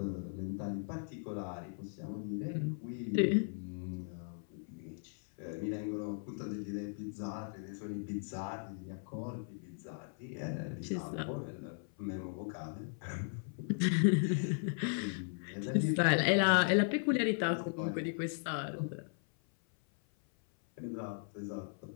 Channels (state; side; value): silent; right; 53 dB below the other